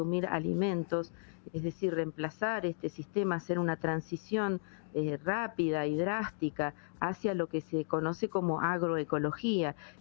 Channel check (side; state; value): right; silent; digital silence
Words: alimentos, es decir, reemplazar este sistema, hacer una transición rápida y drástica hacia lo que se conoce como agroecología,